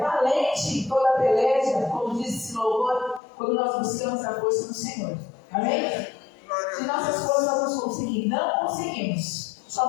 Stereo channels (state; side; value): drops out; right; at 3.2 s